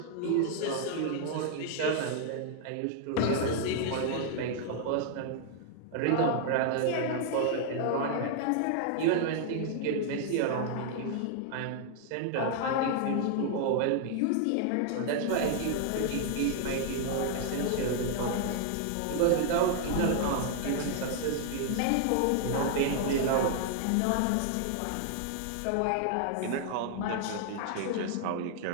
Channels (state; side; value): different; both; correlation 0.00